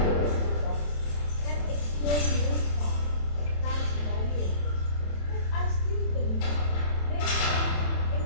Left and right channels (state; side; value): late; right; 27 ms